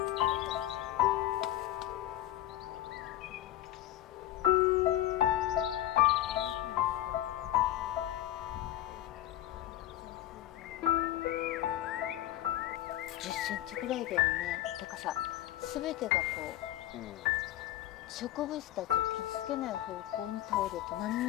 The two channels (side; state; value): right; quieter; 13.8 dB